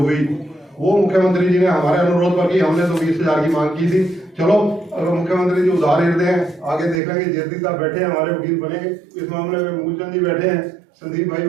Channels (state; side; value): drops out; left; at 7.0 s